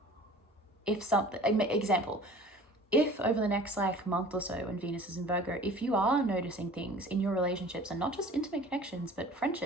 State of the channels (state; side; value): normal; both; correlation 0.45